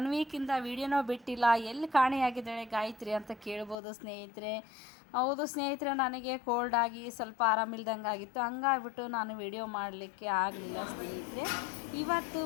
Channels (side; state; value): right; drops out; at 3.8 s